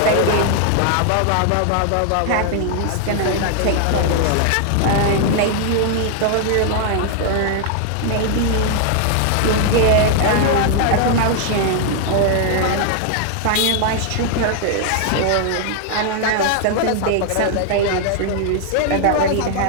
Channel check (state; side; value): different; both; correlation 0.00